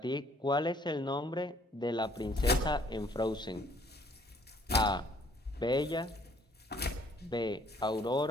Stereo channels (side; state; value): both; normal; correlation 0.62